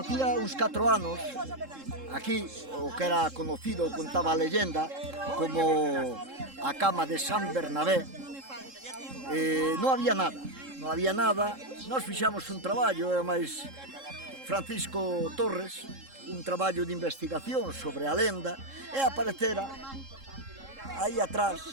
uns 4 anos, aquí, o que era conocido, contaba a leyenda, como a cama de San Bernabé, non había nada. Non había nada, nós fixamos un traballo, e máis Francisco Torres, un traballo de investigación sobre a lenda, e aparecera aí atrás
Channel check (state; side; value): late; left; 3.7 ms